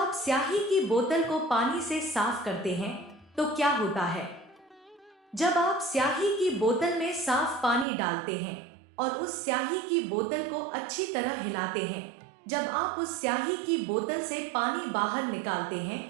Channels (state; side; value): drops out; left; at 7.9 s